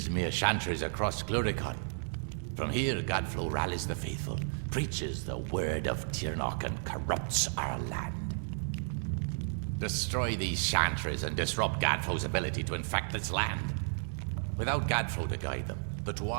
chantries across Cluricon. From here, Gadflow rallies the faithful, preaches the word of Tirnoch, and corrupts our land. Destroy these chantries and disrupt Gadflow's ability to infect this land. Without Gadflow to guide them, the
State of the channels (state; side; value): silent; left; 56 dB below the other